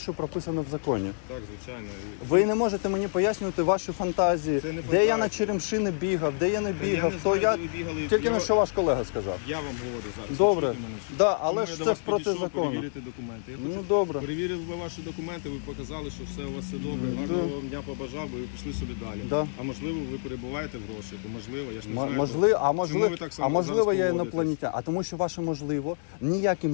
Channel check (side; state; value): right; silent; digital silence